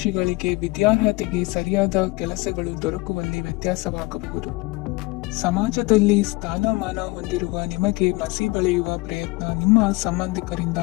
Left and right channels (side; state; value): right; quieter; 23.7 dB